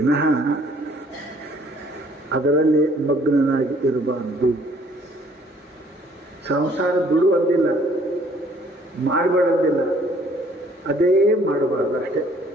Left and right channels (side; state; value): both; normal; correlation 0.60